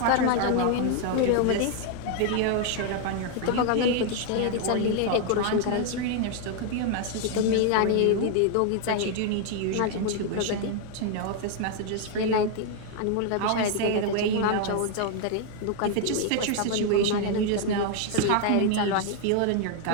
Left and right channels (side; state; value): both; different; correlation 0.00